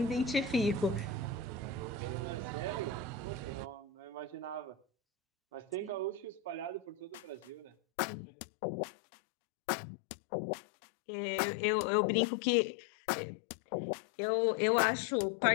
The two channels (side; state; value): right; drops out; at 7.8 s